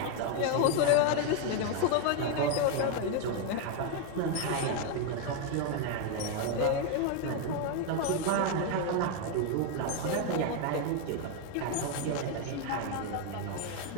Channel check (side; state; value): both; different; correlation 0.01